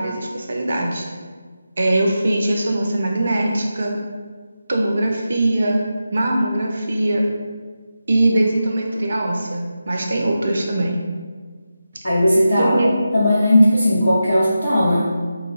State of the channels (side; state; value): both; inverted; correlation -0.90